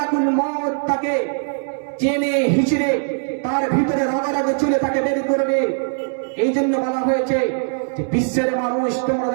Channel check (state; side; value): silent; left; digital silence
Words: মউত তাকে চেনে হিচড়ে তার ভিতরে রাগে চলে তাকে বের করবে। এই জন্য বলা হয়েছে যে বিশ্বের মানুষ তোমরা